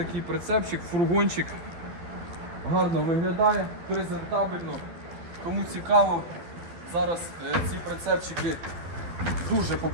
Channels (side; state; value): left; late; 12 ms